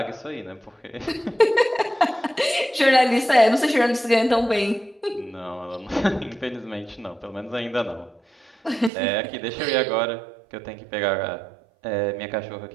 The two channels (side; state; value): left; drops out; at 8.9 s